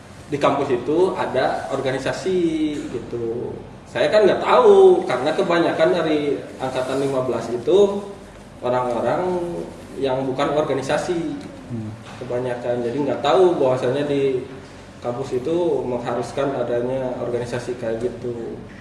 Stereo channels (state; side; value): identical; both; correlation 1.00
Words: di kampus itu ada organisasi gitu. Saya kan nggak tahu karena kebanyakan dari angkatan 15 itu orang-orang yang bukan organisasi kebanyakan. Jadi nggak tahu bahwasanya di kampus itu mengharuskan adanya organisasi kayak gitu.